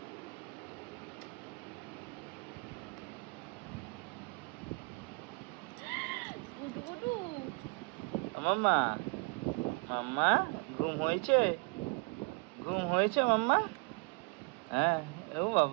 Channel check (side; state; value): left; quieter; 33.3 dB